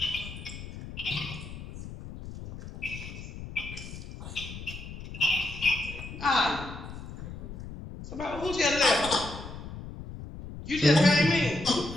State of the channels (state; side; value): noise; left; rumble, 11 dB below the sound